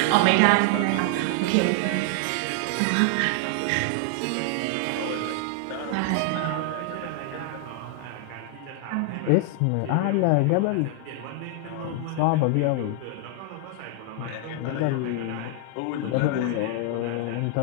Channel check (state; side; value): different; both; correlation 0.00